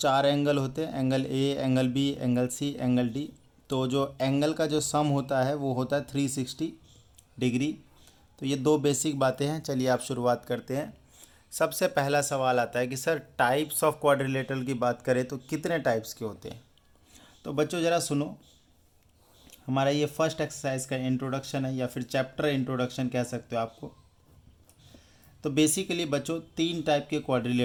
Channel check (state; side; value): identical; both; correlation 1.00